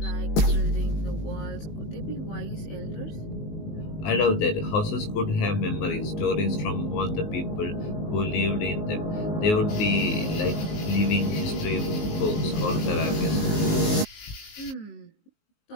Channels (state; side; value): late; right; 19 ms